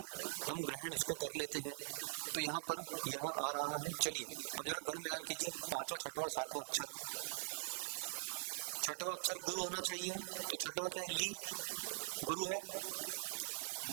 हम ग्रहण उसको कर लेते हैं। तो यहाँ पर यह आ रहा है। चलिए अब जरा गण मिलान कीजिए, 5वां 6वां और 7वां अक्षर। छठवां अक्षर गुरु होना चाहिए, तो छठवां क्या है? ली, गुरु है।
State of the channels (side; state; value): left; silent; digital silence